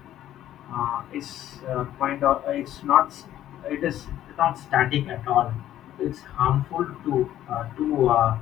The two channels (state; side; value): quieter; right; 12.3 dB